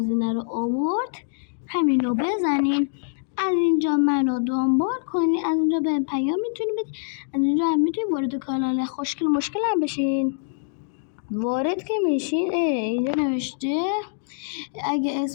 رو آورد همین رو بزنین. از اینجا منو دنبال کنین، از اینجا به پیام میتونید بدین، از اینجا هم میتونید وارد کانال خوشگل مشکل هم بشین. وارد که میشین اینجا نوشته اگه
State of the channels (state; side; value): silent; right; digital silence